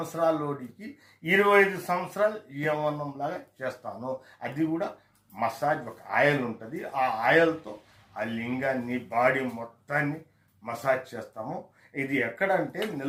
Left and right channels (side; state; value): both; identical; correlation 1.00